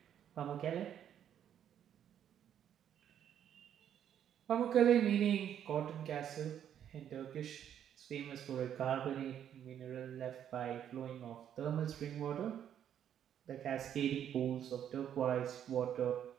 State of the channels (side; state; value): left; quieter; 9.7 dB